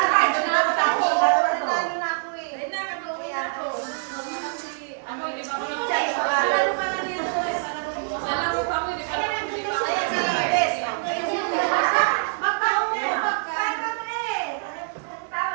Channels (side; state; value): left; silent; digital silence